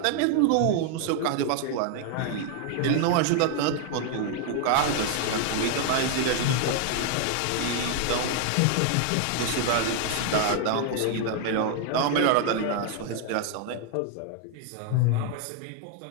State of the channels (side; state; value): both; different; correlation 0.00